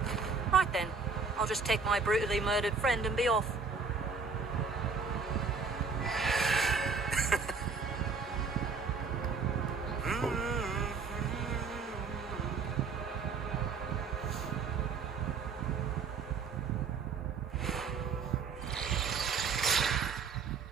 Right then, I'll just take my brutally murdered friend and be off.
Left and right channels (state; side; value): quieter; left; 4.8 dB